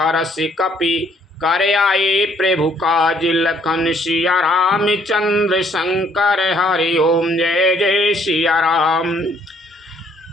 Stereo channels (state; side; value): normal; both; correlation 0.65